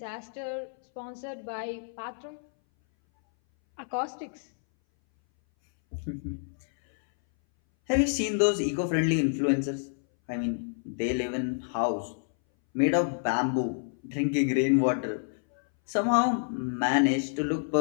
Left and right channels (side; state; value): right; silent; 59 dB below the other